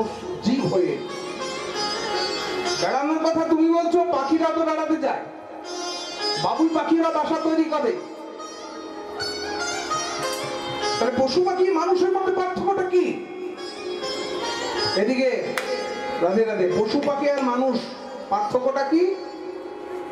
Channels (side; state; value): both; identical; correlation 1.00